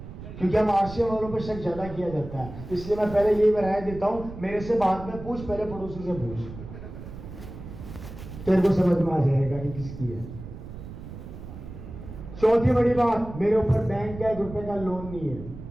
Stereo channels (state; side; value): noise; right; rumble, 12 dB below the sound